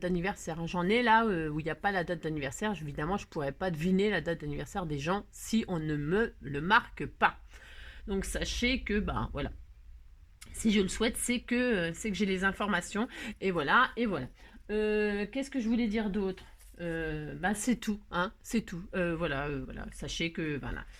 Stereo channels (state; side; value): identical; both; correlation 1.00